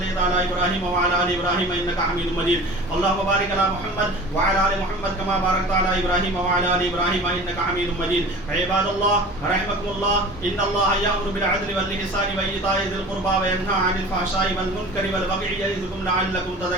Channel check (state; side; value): normal; both; correlation 0.40